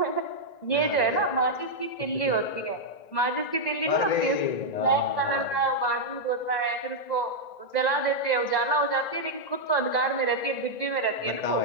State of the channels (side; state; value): right; late; 1.9 ms